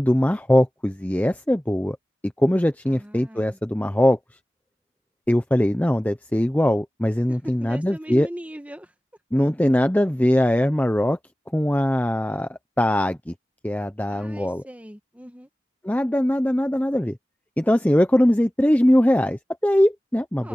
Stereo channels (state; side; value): normal; both; correlation 0.97